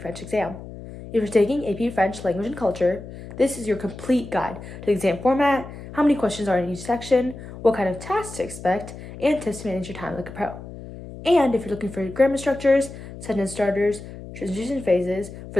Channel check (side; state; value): left; noise; hum, 13 dB below the sound